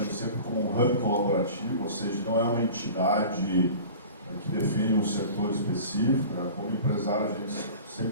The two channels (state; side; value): inverted; both; correlation -0.40